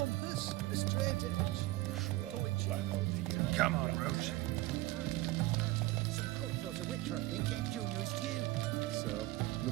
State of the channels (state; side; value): quieter; left; 18.4 dB